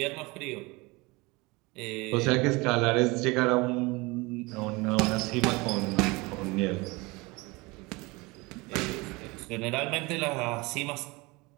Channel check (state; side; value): quieter; left; 24.5 dB